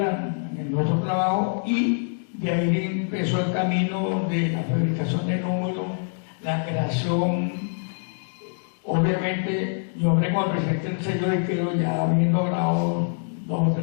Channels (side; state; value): right; silent; digital silence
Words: en nuestro trabajo y de ahí empezó el camino de la fabricación de números, la creación. Obviamente, yo hablé con el presidente del sello de Quero, ya habiendo grabado 2 o